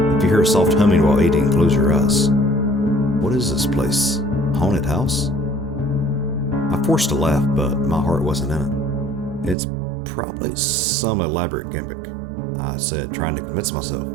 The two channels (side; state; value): left; drops out; at 9.6 s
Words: "If you hear a soft humming while eating, close your eyes." What is this place? Haunted house? I forced a laugh, but my heart wasn't in it. "It's probably some elaborate gimmick," I said, trying to convince myself.